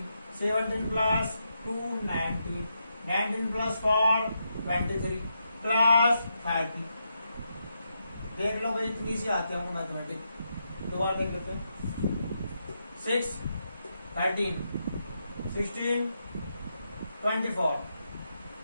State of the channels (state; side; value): inverted; both; correlation -0.83